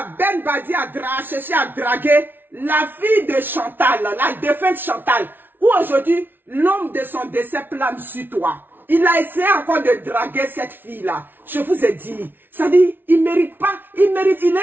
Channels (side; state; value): left; late; 0.098 ms